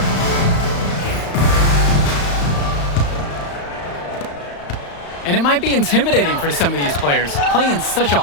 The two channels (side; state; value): right; late; 35 ms